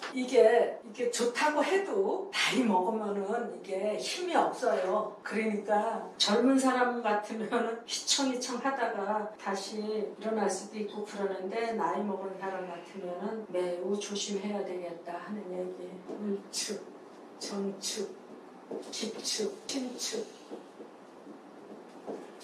이게 좋다고 해도 나이 먹으면은 이게 힘이 없어요. 그러니까 젊은 사람 같으면 휘청휘청 하다가 다시 일어날 수도 있고 그러는데 나이 먹은 사람 같으면은 매우 조심해야 되겠다 하는 얘기. 을축, 정축, 기축, 신축,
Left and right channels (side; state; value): both; identical; correlation 1.00